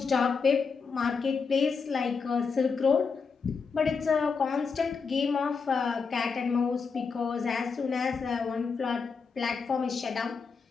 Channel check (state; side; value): quieter; right; 5.3 dB